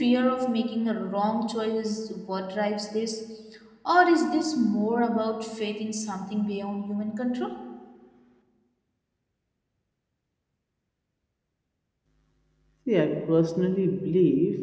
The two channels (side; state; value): both; identical; correlation 1.00